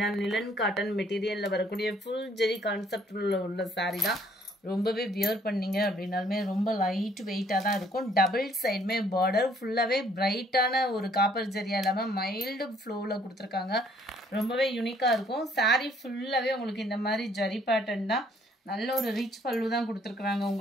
லினன் காட்டன் மெட்டீரியல்ல வரக்கூடிய ஃபுல் ஜெரி கான்செப்ட் உள்ள சாரி தான். ரொம்பவே வியர் பண்ணீங்க அப்படின்னாலுமே ரொம்ப லைட் வெயிட்டா தான் இருக்கும். டபுள் சைடுமே பார்டர் ஃபுல்லாவே பிரைட்டான ஒரு காப்பர் ஜெரியா இல்லாம மைல்டு ஃப்ளோல கொடுத்துருக்காங்க. ரொம்பவே யூனிக்கா இருக்கும். சாரி ஃபுல்லாவே உங்களுக்கு இந்த மாதிரி ஜரி பேட்டர்ன் தான். நல்ல ஒரு ரிச் பல்லு தான் கொடுத்துருக்காங்க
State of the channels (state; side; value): normal; both; correlation 0.63